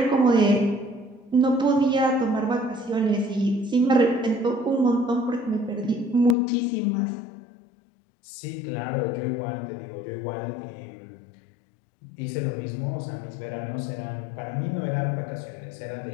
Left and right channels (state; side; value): drops out; right; at 6.4 s